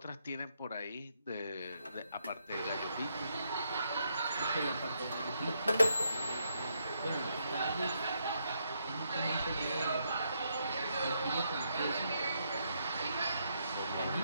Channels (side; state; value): both; inverted; correlation -0.77